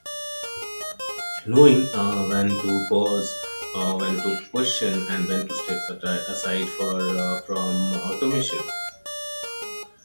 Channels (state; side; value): inverted; both; correlation -1.00